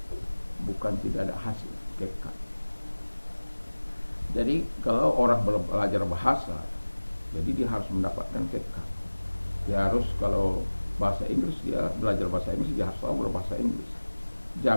bukan tidak ada hasil, kekka. Jadi kalau orang belajar bahasa, jadi dia harus mendapatkan KK. Dia harus, kalau bahasa Inggris, dia belajar bahasa Inggris, dia harus tahu berbahasa Inggris.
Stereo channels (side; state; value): both; inverted; correlation -1.00